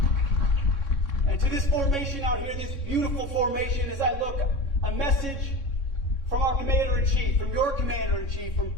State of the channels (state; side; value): late; right; 3.6 ms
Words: And to this formation out here, this beautiful formation, as I look, a message from our Commander-in-Chief, from your Commander-in-Chief, from